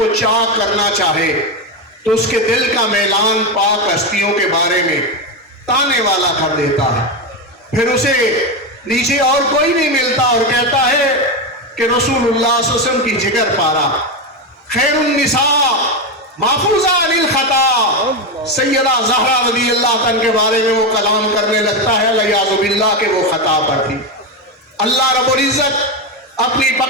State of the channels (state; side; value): normal; both; correlation 0.12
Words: چاک کرنا چاہے تو اس کے دل کا میلان پاک ہستیوں کے بارے میں تانے والا کر دیتا ہے، پھر اسے نیچے اور کوئی نہیں ملتا اور کہتا ہے کہ رسول اللہ صلی اللہ علیہ وسلم کی جگر پارا، خیر النساء محفوظہ عن الخطا، سیدہ زہرا رضی اللہ عنہ کے بارے میں وہ کلام کرنے لگتا ہے والعیاذ باللہ کہ وہ خطا پر تھی۔ اللہ رب العزت اپنی